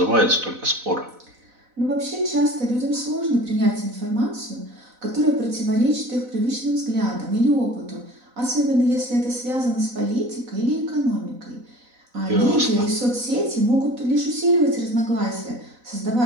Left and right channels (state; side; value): late; left; 4.0 ms